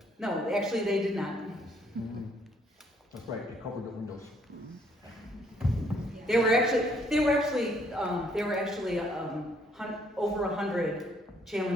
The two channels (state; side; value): normal; both; correlation 0.67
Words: No, actually they did not. That's right, they covered the windows. There were actually over 100